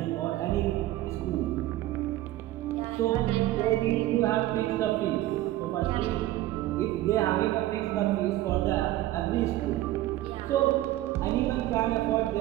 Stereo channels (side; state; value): left; quieter; 15.3 dB